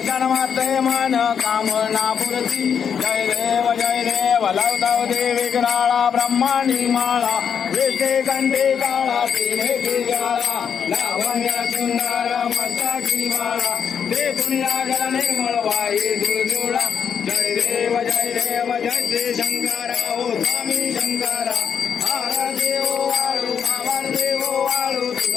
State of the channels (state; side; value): quieter; right; 7.4 dB